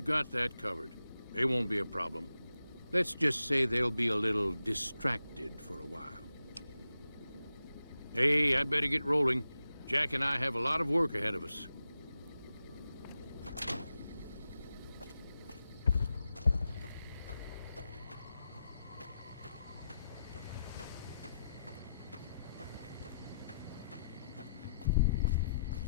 got that covered. They won't be a problem. Let's just say they'll be a little distracted for a while. Hey, I'd better get rolling. Jack and I have a lot of work ahead of us.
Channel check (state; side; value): inverted; both; correlation -0.86